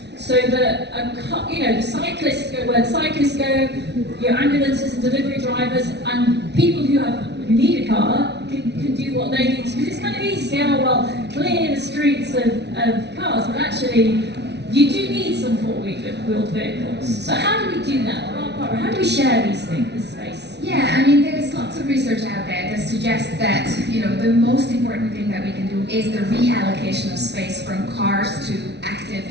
so that the cyclists go where the cyclists go, your ambulances and delivery drivers, and people who need a car can do what they need? Because it's kind of easy to say, oh well, clear the streets of cars, but actually you do need some four-wheeled vehicles. So how do we do that? How do we share these things, this space? Yeah, I mean, there's lots of research out there that suggests that, the most important thing that we can do is the reallocation of space from cars to active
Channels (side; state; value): left; late; 0.50 ms